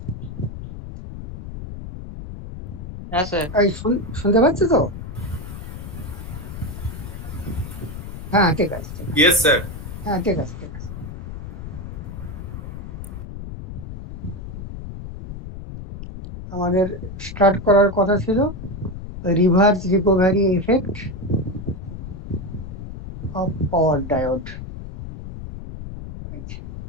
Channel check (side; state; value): left; noise; rumble, 10 dB below the sound